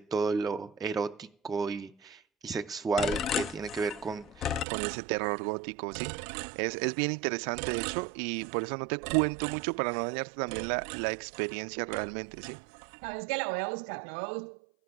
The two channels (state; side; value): drops out; left; at 4.7 s